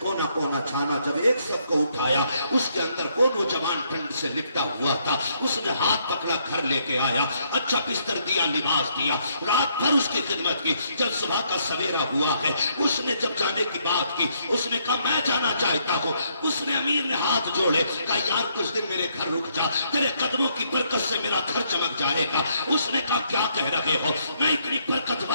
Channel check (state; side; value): inverted; both; correlation -0.72